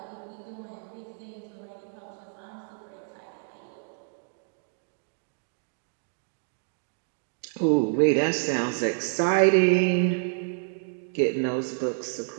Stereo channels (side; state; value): left; silent; 59 dB below the other